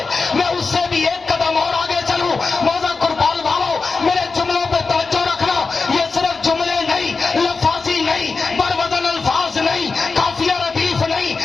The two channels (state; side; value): quieter; right; 4.3 dB